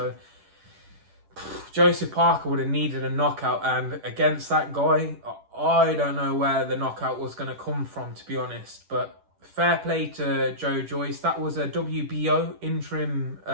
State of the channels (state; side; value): late; left; 10 ms